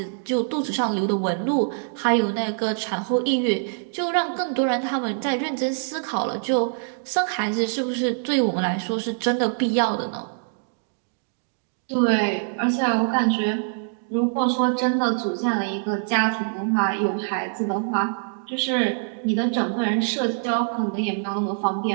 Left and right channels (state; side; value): silent; left; digital silence